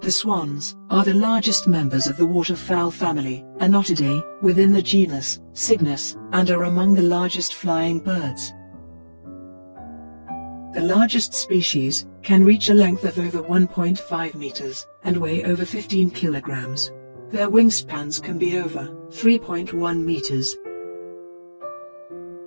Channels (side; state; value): both; inverted; correlation -1.00